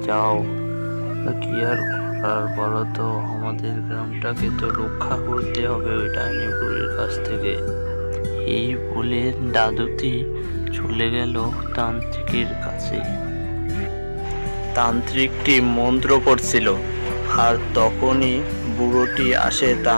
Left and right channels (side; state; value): both; inverted; correlation -1.00